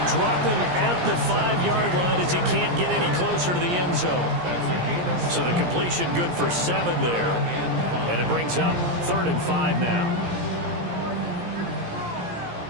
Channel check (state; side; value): late; left; 17 ms